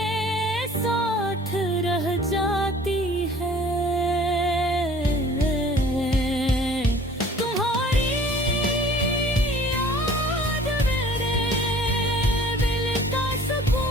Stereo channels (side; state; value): both; normal; correlation 0.50